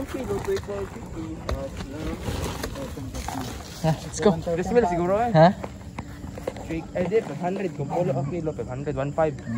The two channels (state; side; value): identical; both; correlation 1.00